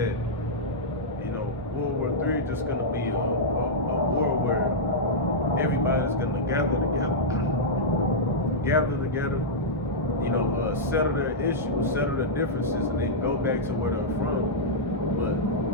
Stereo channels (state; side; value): normal; both; correlation -0.09